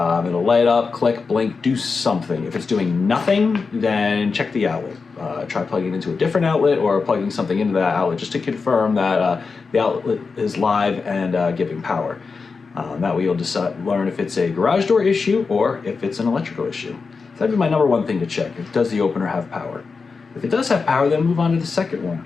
light up, click, blink, do something. If it's doing nothing, then check the outlet. Try plugging it into a different outlet or plugging something into that outlet just to confirm that the outlet is live and giving power. That way you'll learn if it's a garage door issue or if it's an electrical issue. So that'd be my number one thing to check. Does the opener have power? If it does have power, then move on to the second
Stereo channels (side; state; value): right; quieter; 4.7 dB